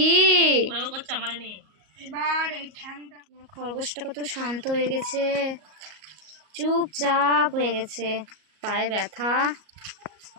খরগোশটা কত শান্ত হয়ে গেছে, চুপচাপ হয়ে গেছে। পায়ে ব্যথা,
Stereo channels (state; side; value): late; left; 38 ms